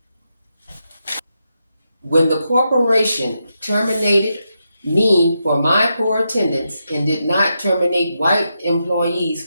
When the corporation terminated me for my poor attendance and did not terminate white employees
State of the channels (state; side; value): inverted; both; correlation -0.85